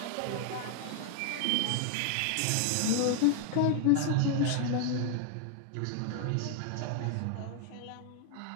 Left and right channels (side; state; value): both; different; correlation 0.00